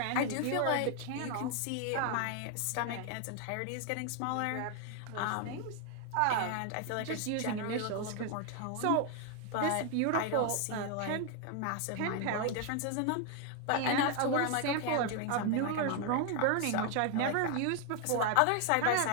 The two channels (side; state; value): both; different; correlation 0.00